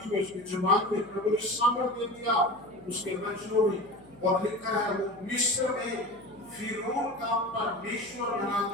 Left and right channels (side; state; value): left; noise; hum, 27 dB below the sound